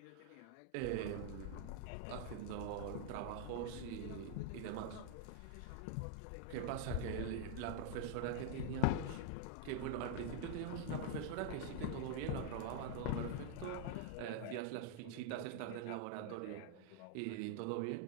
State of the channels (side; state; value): both; different; correlation 0.00